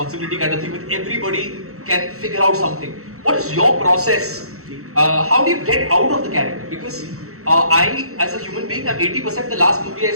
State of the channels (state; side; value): late; left; 0.64 ms